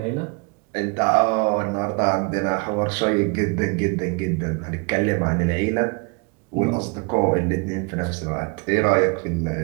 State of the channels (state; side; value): quieter; left; 31.1 dB